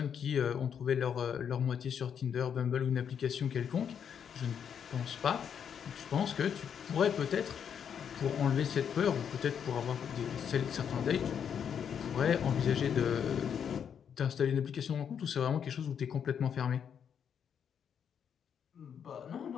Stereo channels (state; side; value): quieter; right; 7.9 dB